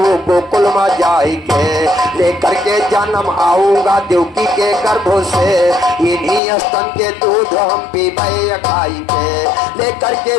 गोकुल में जाई के। लेकर के जन्म आऊंगा देवकी के गर्भों से। इन्हीं स्तन के दूध हम पीबे खाई के। लेकर के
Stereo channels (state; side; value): drops out; right; at 6.4 s